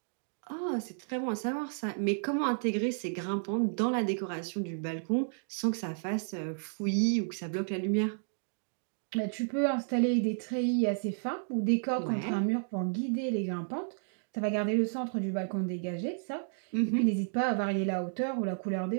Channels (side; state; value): left; silent; digital silence